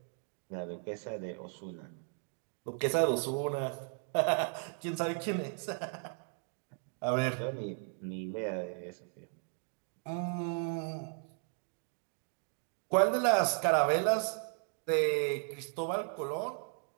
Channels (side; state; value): left; silent; 54 dB below the other